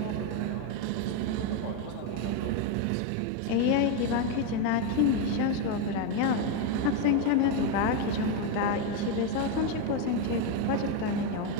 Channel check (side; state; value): both; different; correlation 0.03